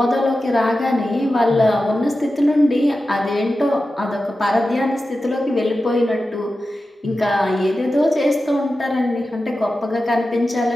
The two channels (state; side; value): normal; both; correlation 0.93